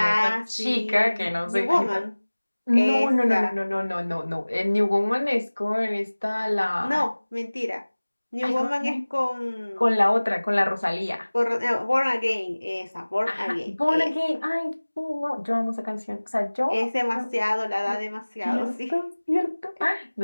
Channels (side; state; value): both; inverted; correlation -1.00